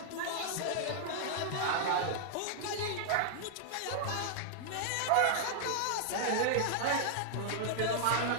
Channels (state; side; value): different; both; correlation -0.01